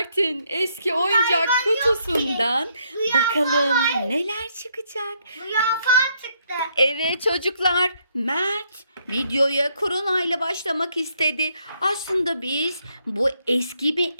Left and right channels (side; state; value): both; inverted; correlation -0.72